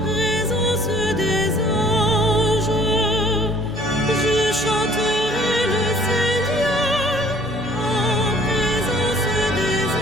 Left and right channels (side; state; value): both; normal; correlation 0.55